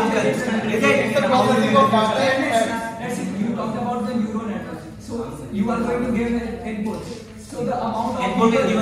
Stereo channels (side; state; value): both; identical; correlation 1.00